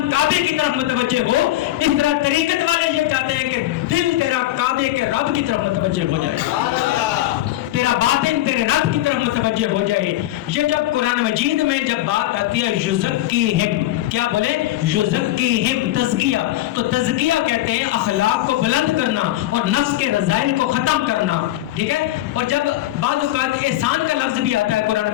کعبے کی طرف متوجہ ہو, اس طرح طریقت والے یہ چاہتے ہیں کہ دل تیرا کعبے کے رب کی طرف متوجہ ہو جائے, تیرا باطن تیرے رب کی طرف متوجہ ہو جائے. یہ جب قرآن مجید میں جب بات آتی ہے یزکیہم, کیا بولے؟ یزکیہم, تزکیہ. تو تزکیہ کہتے ہیں اخلاق کو بلند کرنا اور نفس کے رذائل کو ختم کرنا. ٹھیک ہے. اور جب بعض اوقات احسان کا لفظ بھی آتا ہے قرآن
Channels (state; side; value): quieter; right; 15.0 dB